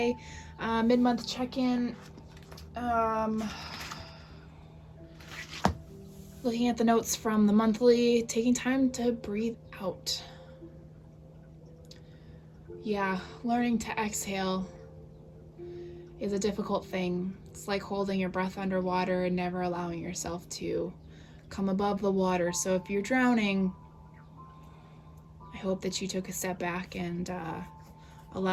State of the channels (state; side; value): identical; both; correlation 1.00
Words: Mid-month check-in. Looking at the notes from the monthly, taking time to breathe out. Yeah, learning to exhale is a difficult thing. It's like holding your breath underwater and never allowing yourself to come above the water. So if you're drowning, I hope that you took a step back and